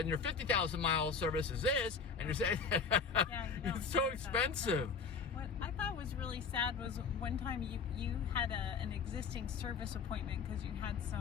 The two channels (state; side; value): quieter; right; 5.4 dB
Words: 50,000 mile service is this, and you're saying, it's so expensive. What I thought was really sad was one time you had an existing service appointment because you had